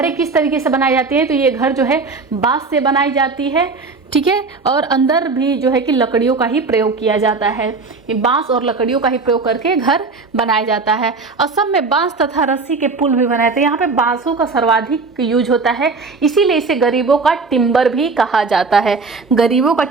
किस तरीके से बनाई जाती है, तो ये घर जो है बांस से बनाई जाती है, ठीक है, और अंदर भी जो है कि लकड़ियों का ही प्रयोग किया जाता है। ये बांस और लकड़ियों का ही प्रयोग करके घर बनाया जाता है। असम में बांस तथा रस्सी के पुल भी बनाए थे। यहाँ पे बांसों का सर्वाधिक यूज होता है, इसीलिए इसे गरीबों का टिम्बर भी कहा जाता है। गरीबों का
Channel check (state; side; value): quieter; left; 4.2 dB